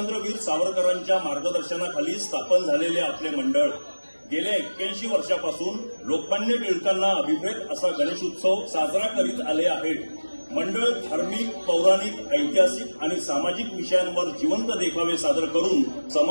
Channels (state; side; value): inverted; both; correlation -1.00